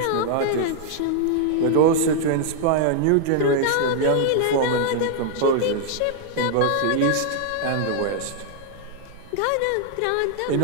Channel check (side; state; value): both; different; correlation -0.01